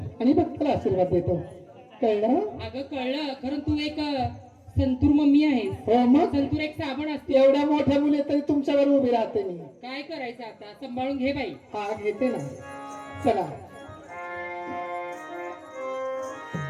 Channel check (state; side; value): identical; both; correlation 1.00